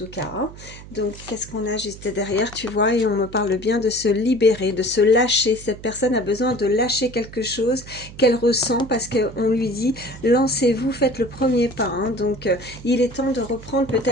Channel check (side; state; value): right; noise; hum, 16 dB below the sound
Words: cas. Hein. Donc qu'est-ce qu'on a juste derrière, tu vois, et on me parle bien de se libérer, de se lâcher. Cette personne a besoin de lâcher quelque chose qu'elle ressent parce qu'on lui dit lancez-vous, faites le premier pas. Hein. Donc il est temps de reprendre